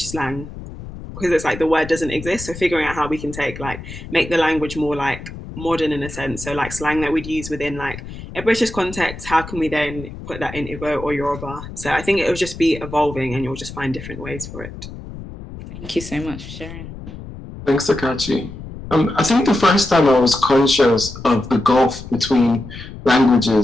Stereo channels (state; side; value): noise; left; rumble, 12 dB below the sound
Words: slang, because it's like the word doesn't exist. So figuring out how we can make the language more like modern in a sense. So like slang that we'd use within like a British context, how can we then put that in Igbo or Yoruba? So I think it will just be evolving, and you'll just find different ways for it. Thank you so much for sharing. Thanks, Akachi. I think the first time I was conscious of the gulf between